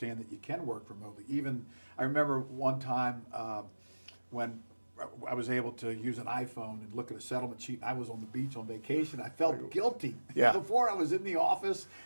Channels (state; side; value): inverted; both; correlation -1.00